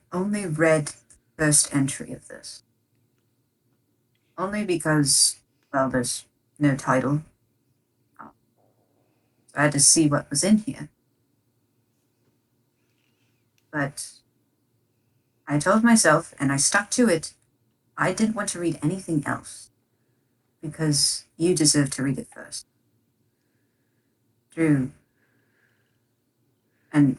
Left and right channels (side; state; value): both; identical; correlation 1.00